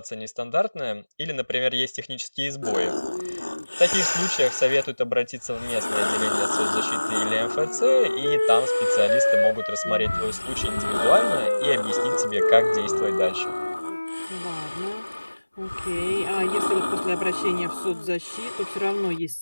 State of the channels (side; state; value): both; inverted; correlation -1.00